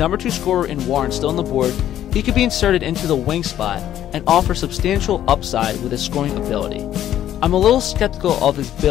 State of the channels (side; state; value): right; quieter; 11.6 dB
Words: 2 scorer in Warren still on the board, he could be inserted into the wing spot and offer substantial upside with his scoring ability. I'm a little skeptical of his